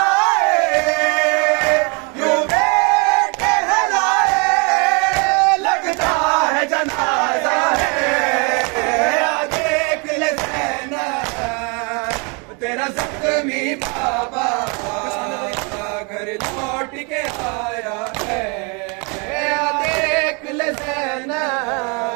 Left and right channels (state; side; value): quieter; left; 33.4 dB